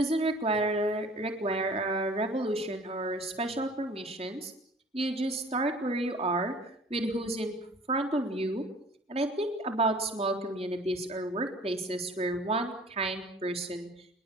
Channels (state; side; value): normal; both; correlation 0.49